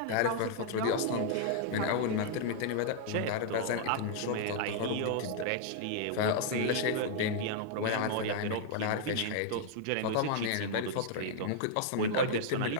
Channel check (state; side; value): different; both; correlation -0.01